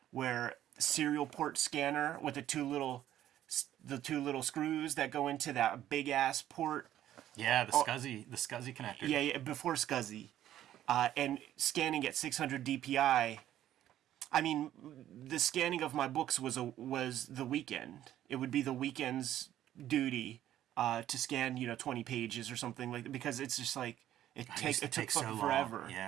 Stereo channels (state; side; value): quieter; left; 12.3 dB